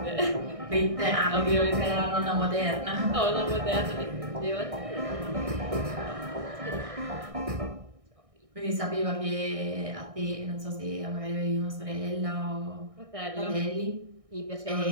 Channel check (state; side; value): late; left; 1.6 ms